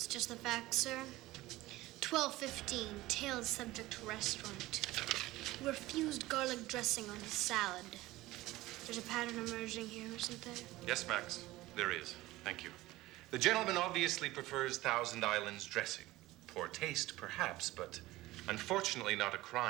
just the facts, sir. 12:15, tailed subject to restaurant. Refused garlic dressing on his salad. There's a pattern emerging here, isn't there? Yes, Max, there is. Thank you. The gentleman obviously prefers Thousand Islands dressing. Poor taste, perhaps, but unfortunately not a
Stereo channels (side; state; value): left; quieter; 18.0 dB